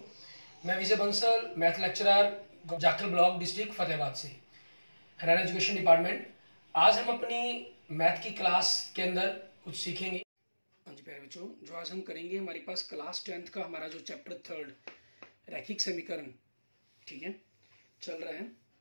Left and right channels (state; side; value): inverted; both; correlation -1.00